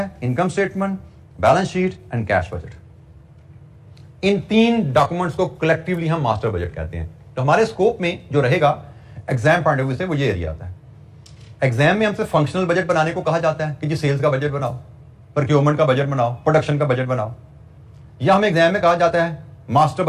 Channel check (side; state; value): both; identical; correlation 1.00